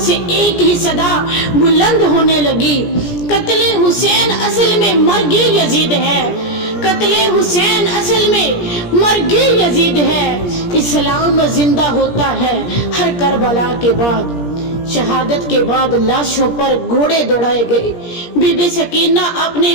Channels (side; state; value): right; late; 17 ms